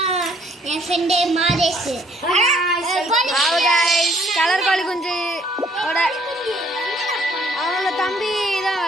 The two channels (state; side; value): normal; both; correlation 0.63